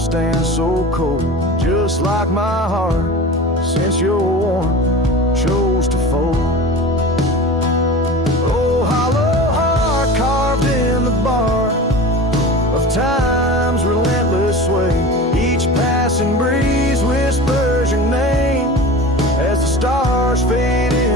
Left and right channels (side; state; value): both; normal; correlation 0.34